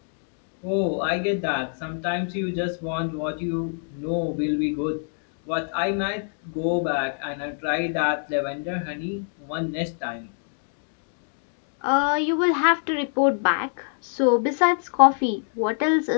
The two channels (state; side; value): silent; right; 60 dB below the other